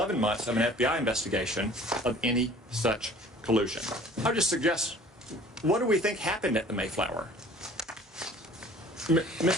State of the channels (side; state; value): both; normal; correlation 0.49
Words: months of an FBI investigation of any such collusion. I would just suggest, what do we think happened at the Mayflower?